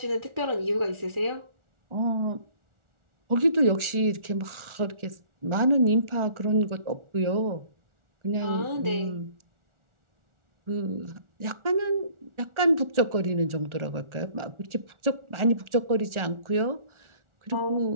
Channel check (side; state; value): left; late; 1.4 ms